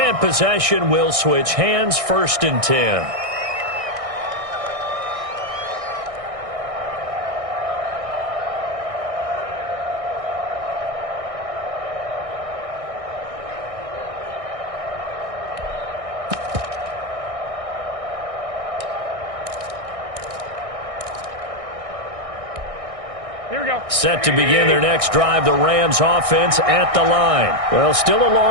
possession will switch hands, 1st and 10. Set to begin their next drive, the Rams offense at the line. Well, still a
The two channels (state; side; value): late; left; 1.6 ms